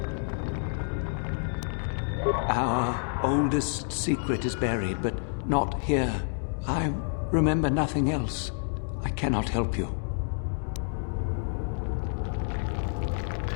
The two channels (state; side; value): silent; right; 59 dB below the other